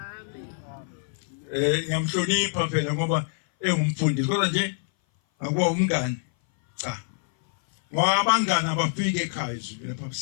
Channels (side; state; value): right; silent; 57 dB below the other